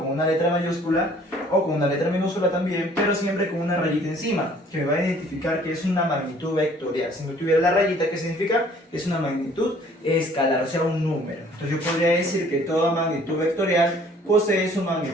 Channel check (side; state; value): both; normal; correlation 0.56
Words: una letra mayúscula o con una letra minúscula también, pero siempre con una rayita encima, que me va a identificar que es una magnitud vectorial. Si no tuviera la rayita, ¿qué significa? Es una magnitud escalar, o sea, un número. Entonces yo podría decir que toda magnitud vectorial posee su